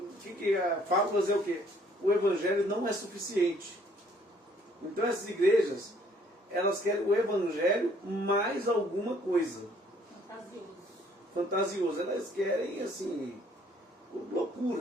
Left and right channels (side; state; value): both; normal; correlation 0.62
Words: que é fábulas é o quê? O evangelho não é suficiente. Então essas igrejas, elas querem o evangelho mais alguma coisa. Fantasioso. Elas querem, assim,